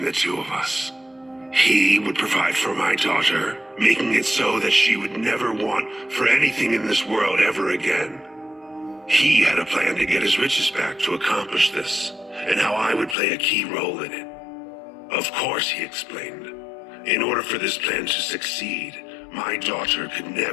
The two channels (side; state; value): right; drops out; at 13.2 s